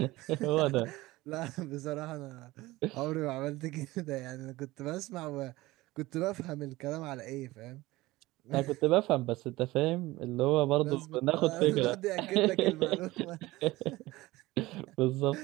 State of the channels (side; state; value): left; quieter; 19.1 dB